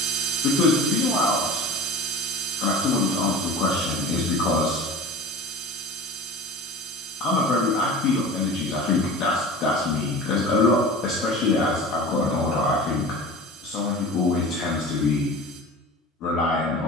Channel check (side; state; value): both; normal; correlation 0.36